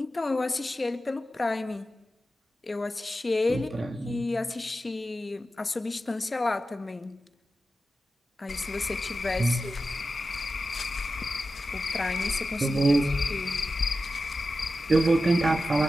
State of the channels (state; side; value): normal; both; correlation 0.92